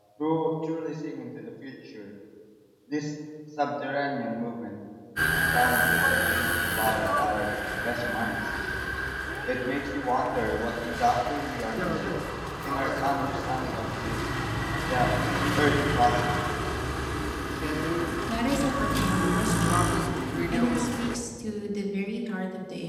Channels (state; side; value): identical; both; correlation 1.00